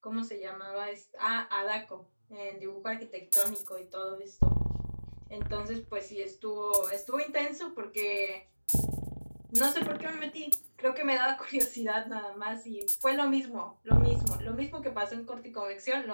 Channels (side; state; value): both; inverted; correlation -1.00